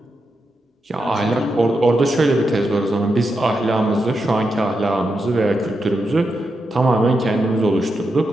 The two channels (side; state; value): both; normal; correlation 0.86